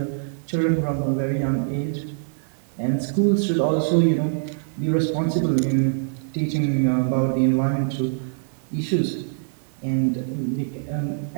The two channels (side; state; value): left; silent; 63 dB below the other